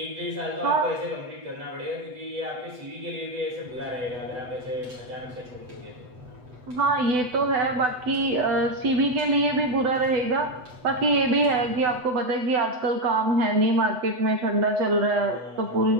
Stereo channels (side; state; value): left; late; 8.0 ms